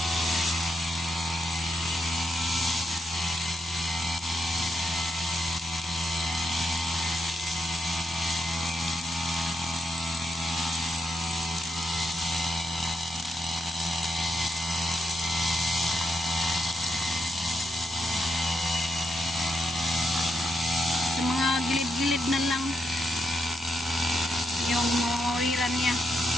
Gilid na lang yung mawiran niya.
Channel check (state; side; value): normal; both; correlation 0.82